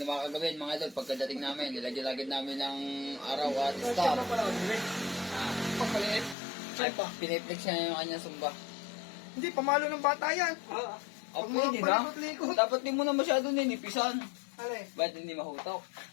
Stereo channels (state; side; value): drops out; right; at 6.4 s